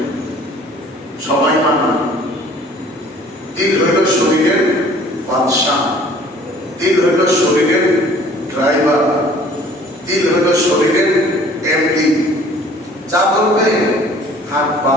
সবাই মানে। দিল হইল শরীরের বাদশাহ, দিল হইল শরীরের ড্রাইভার, দিল হইল শরীরের এমডি। যা বলবে হাত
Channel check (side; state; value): both; normal; correlation 0.53